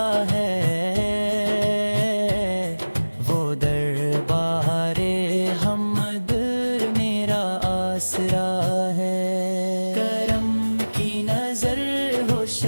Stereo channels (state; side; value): inverted; both; correlation -1.00